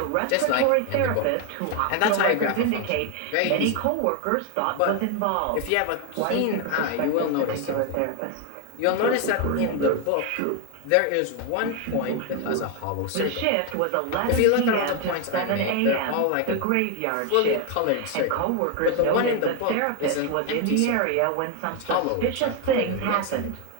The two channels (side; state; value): both; different; correlation 0.01